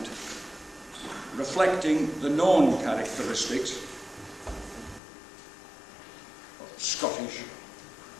reflecting the known characteristics of Scottish,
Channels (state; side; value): drops out; right; at 5.0 s